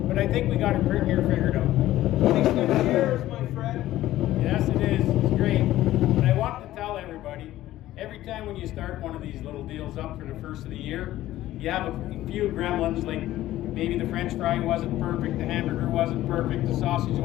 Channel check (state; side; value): quieter; right; 14.7 dB